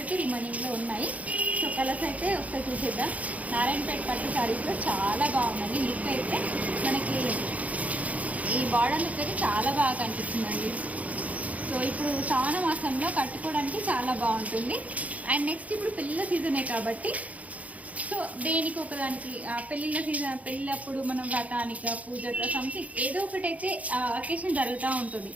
అయితే రిమైనింగ్లో ఉన్నాయి. సో కలర్స్ అయితే ఒకసారి చూసేద్దాం. నారాయణపేట పట్టు శారీస్లో చాలా బాగుందండి. లుక్ అయితే మనకి ఈ బార్డర్ లుక్ అయితే చాలా బాగా కనిపిస్తుందండి. సో ఇప్పుడు శ్రావణ మాసంలో కట్టుకోవడానికి చాలా బాగుంటుంది. అండ్ నెక్స్ట్ ఇప్పుడు పెళ్ళిళ్ళ సీజనే కాబట్టి సో దేనికి ఒకదానికి పెళ్ళిళ్ళ సీజన్, పెళ్ళప్పుడు మనం వ్రతానిక పూజక సంథింగ్ ఏదో ఒకటైతే అకేషన్ జరుగుతూ ఉంటుంది.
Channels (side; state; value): left; late; 0.070 ms